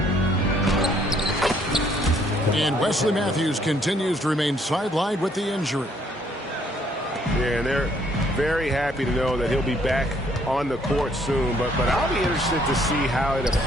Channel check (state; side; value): normal; both; correlation 0.65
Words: And Wesley Matthews continues to remain sidelined with the injury. Yeah, and they're very happy to know that he'll be back on the court soon. But I'll be interested to see how it